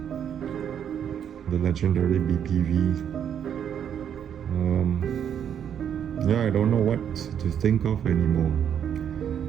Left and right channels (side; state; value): left; quieter; 8.8 dB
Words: the legendary BPV. Yeah, I don't know what to think of anymore.